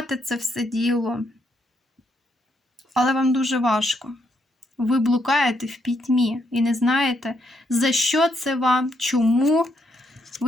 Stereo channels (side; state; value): both; normal; correlation 0.76